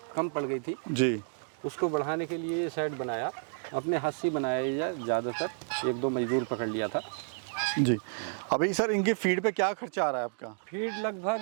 कम पड़ गई थी जी। उसको बढ़ाने के लिए ये शेड बनाया, अपने हाथ से बनाया, ज़्यादातर 1-2 मजदूर पकड़ लिया था जी। अभी सर इनकी फीड पे क्या खर्चा आ रहा है आपका? फीड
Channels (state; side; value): silent; left; digital silence